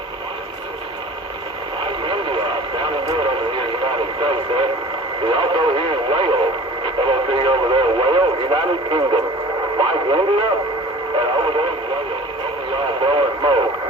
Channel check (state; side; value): normal; both; correlation 0.43